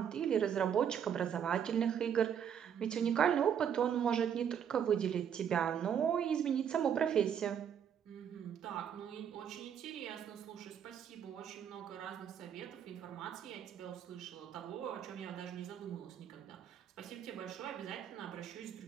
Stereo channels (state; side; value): quieter; left; 8.4 dB